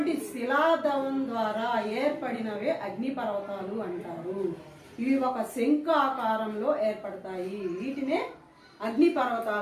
శిలాద్రవం ద్వారా ఏర్పడినవే అగ్నిపర్వతాలు అంటారు. ఇవి ఒక శంఖ ఆకారంలో ఏర్పడతాయి, వీటినే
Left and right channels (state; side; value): identical; both; correlation 1.00